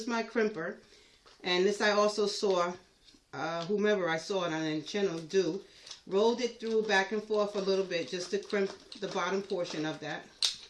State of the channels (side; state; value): both; identical; correlation 1.00